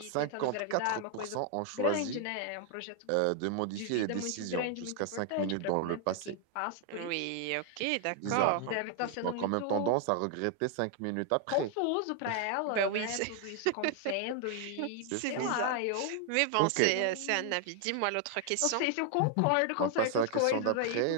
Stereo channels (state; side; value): different; both; correlation 0.00